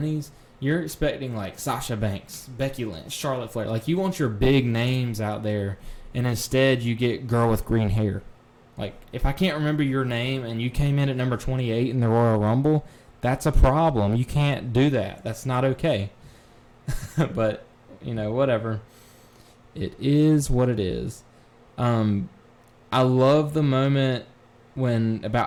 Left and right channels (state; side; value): identical; both; correlation 1.00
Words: you're expecting like Sasha Banks, Becky Lynch, Charlotte Flair, like you want your big names out there, and instead you get girl with green hair. Like, if I can't remember your name and you came in at number 28 in the Royal Rumble, that's a problem. You can't do that. That's not okay. But, whatever. It is what it is. I love the moment when